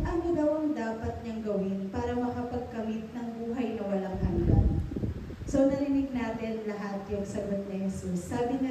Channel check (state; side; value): identical; both; correlation 1.00